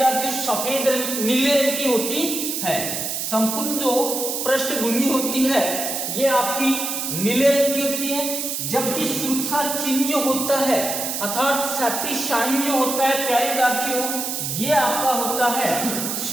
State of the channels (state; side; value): noise; right; hiss, 3 dB below the sound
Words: सफेद नीले रंग की होती है। संपूर्ण जो पृष्ठभूमि होती है ये आपकी नीले रंग की होती है, जबकि सुरक्षा चिन्ह जो होता है अर्थात सेफ्टी साइन जो होता है प्यारे विद्यार्थियों, ये आपका होता है